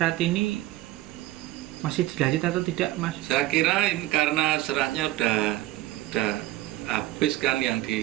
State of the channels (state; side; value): quieter; left; 16.6 dB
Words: ini masih dilanjut atau tidak, Mas? Saya kira ini karena seratnya udah habis kan yang